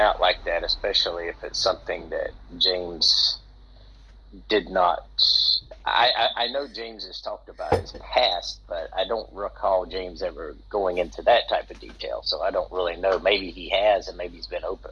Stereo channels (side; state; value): both; identical; correlation 1.00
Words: like that, especially if it's something that James did not. I know James has talked about his past, but I don't recall James ever going into that type of detail, so I don't really know. Maybe he has, and maybe he's been open